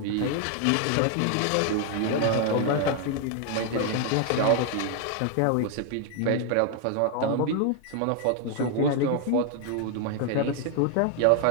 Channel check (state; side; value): different; both; correlation 0.00